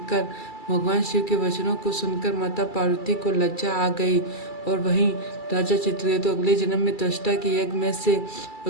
भगवान शिव के वचनों को सुनकर माता पार्वती को लज्जा आ गई और वहीं राजा चित्रकेतु अगले जन्म में त्वष्टा के यज्ञ में से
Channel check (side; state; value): right; late; 2.3 ms